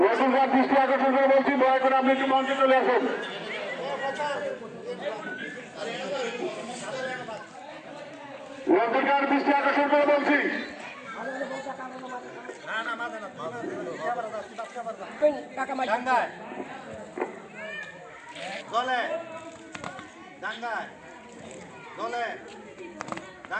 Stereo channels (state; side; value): identical; both; correlation 1.00